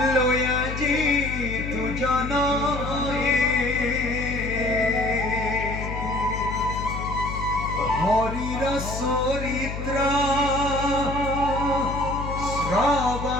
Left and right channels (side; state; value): left; noise; hum, 6 dB below the sound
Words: লয়া যিতু জনয়ে, হৰিৰ চৰিত্ৰ